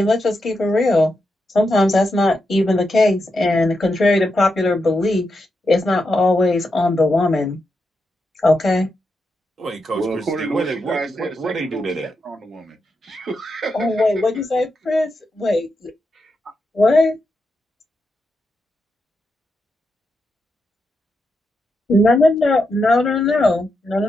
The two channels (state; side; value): normal; both; correlation 0.86